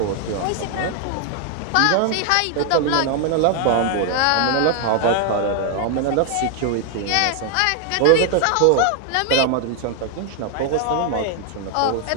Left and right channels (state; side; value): different; both; correlation 0.00